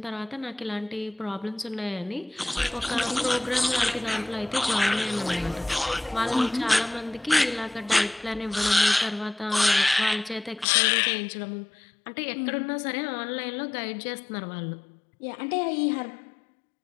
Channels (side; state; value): right; drops out; at 10.7 s